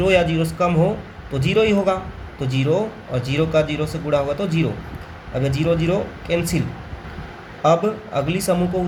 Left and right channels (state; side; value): identical; both; correlation 1.00